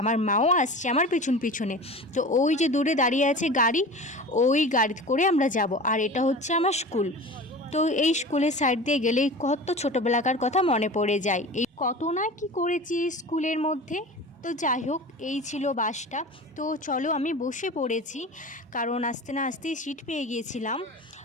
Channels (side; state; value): both; normal; correlation 0.35